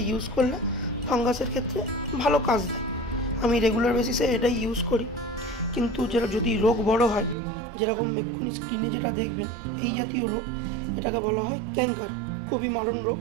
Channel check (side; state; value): left; drops out; at 7.4 s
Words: ইউজ করলে ফাঙ্গাসের ক্ষেত্রে ভালো কাজ দেয়। আমি রেগুলার বেসিসে এটাই ইউজ করি। কিন্তু যেটা যদি রোগ বড় হয়, যেরকম এক্ষুনি স্ক্রিনে যেটা দেখবেন, এই জাতীয় রোগ, এটাকে বলা হয় ক্যাঙ্কার, খুবই মারণ রোগ।